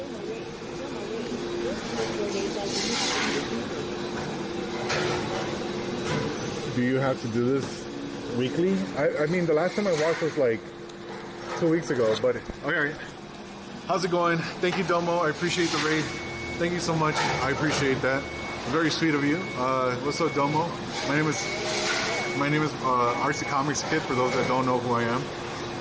Do you have to do this weekly? I mean, the last time I watched was like 2 weeks ago, but okay. How's it going? Thank you, Domo. I appreciate the raid. Thank you so much. I appreciate that. Very sweet of you. What's up, Domo? My name is RC Comics Kid, for those that don't know who I am.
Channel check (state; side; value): identical; both; correlation 1.00